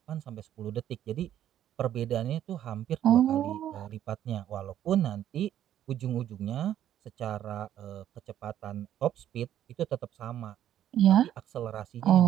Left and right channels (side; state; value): left; quieter; 11.2 dB